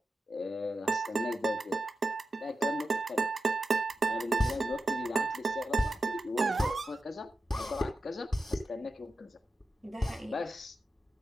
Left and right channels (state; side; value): normal; both; correlation 0.91